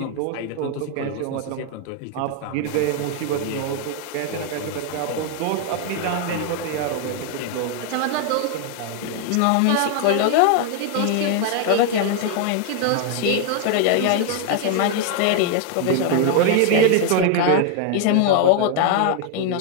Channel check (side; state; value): both; different; correlation 0.00